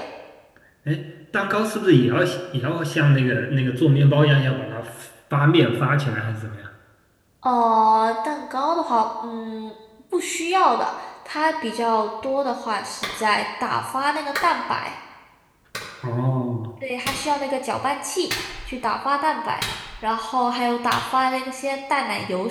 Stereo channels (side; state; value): both; identical; correlation 1.00